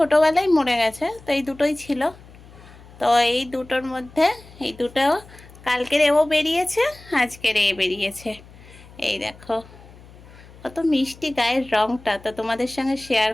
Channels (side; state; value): left; noise; hum, 21 dB below the sound